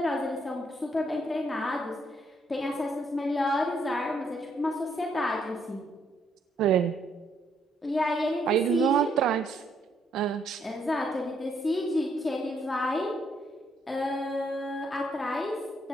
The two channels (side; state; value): both; normal; correlation 0.72